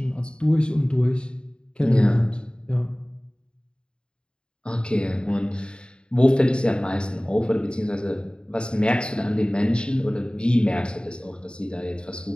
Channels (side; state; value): right; late; 0.051 ms